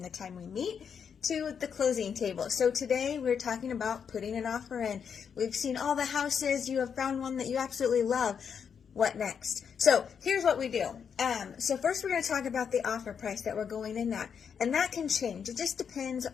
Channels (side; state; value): right; quieter; 7.1 dB